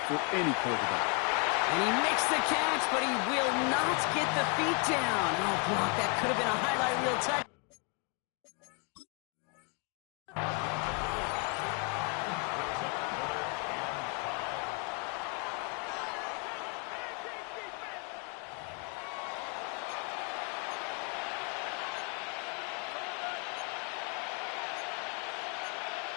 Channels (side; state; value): right; quieter; 34.2 dB